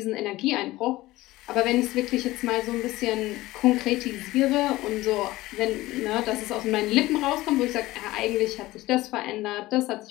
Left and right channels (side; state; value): right; quieter; 18.0 dB